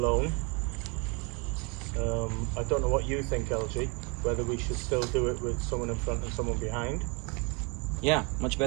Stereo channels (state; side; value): quieter; left; 30.0 dB